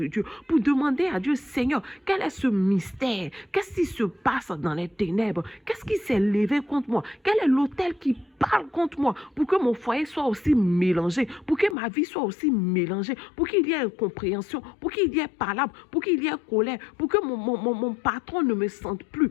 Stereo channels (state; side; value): drops out; right; at 11.8 s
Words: Dieu, pour demander à Dieu, Seigneur, quel est ce mystère? Qu'est-ce qui se passe dans les ténèbres? Qu'est-ce qui s'est levé contre moi? Quel est l'autel qui parle contre moi pour que mon foyer soit aussi mélangé, pour que ma vie soit aussi mélangée, pour qu'il y ait incompréhension, pour qu'il y ait palabre, pour qu'il y ait colère, pour que mon patron ne me sente plus?